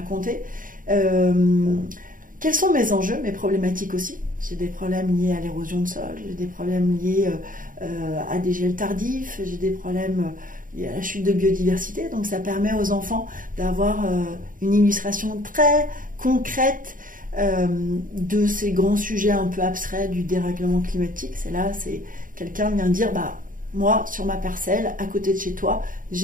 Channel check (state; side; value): late; left; 0.39 ms